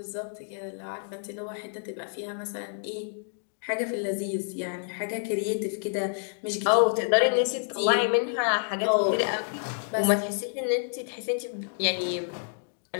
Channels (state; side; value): silent; right; 59 dB below the other